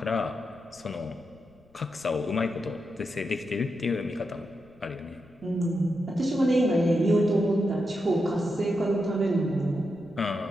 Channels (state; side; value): noise; left; rumble, 29 dB below the sound